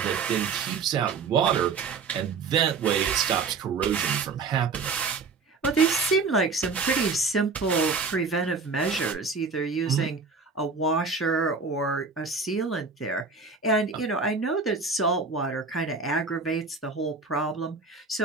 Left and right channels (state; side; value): quieter; left; 4.7 dB